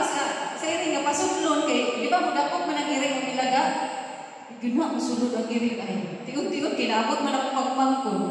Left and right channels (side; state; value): both; identical; correlation 1.00